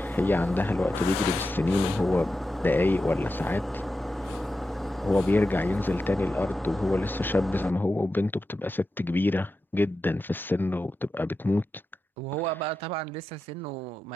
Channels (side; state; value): both; normal; correlation 0.90